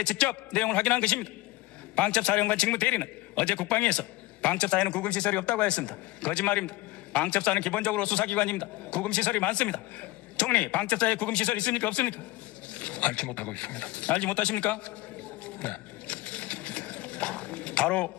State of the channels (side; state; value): right; quieter; 18.5 dB